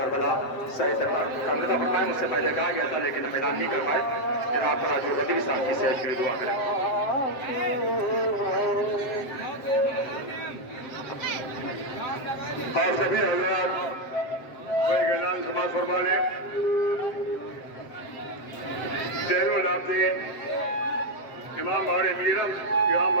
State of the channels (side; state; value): right; late; 7.5 ms